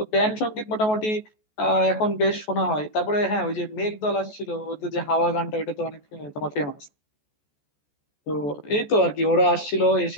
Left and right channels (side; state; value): right; late; 14 ms